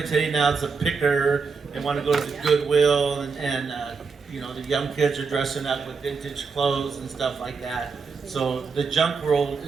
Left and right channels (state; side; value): quieter; left; 5.1 dB